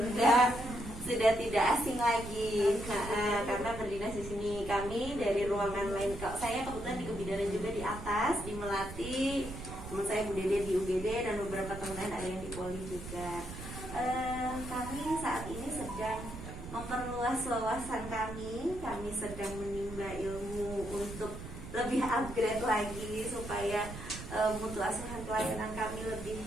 sudah tidak asing lagi, karena berdinas di sini. Kami dari ruangan lain, saya kebetulan di kebidanan juga di atas, di Melati. Teman saya Bu Dede di UGD dan beberapa teman lain ada yang di Poli juga. Kami saat ini sedang memperluas wawasan kami sedang menimba ilmu untuk lebih upgrade lagi supaya mutu asuhan pelayanan kami lebih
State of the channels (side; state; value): right; noise; rumble, 10 dB below the sound